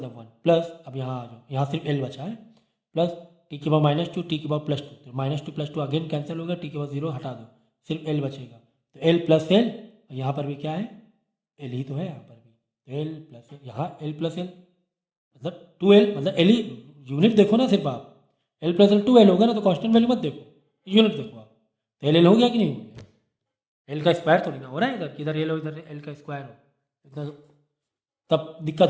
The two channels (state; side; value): identical; both; correlation 1.00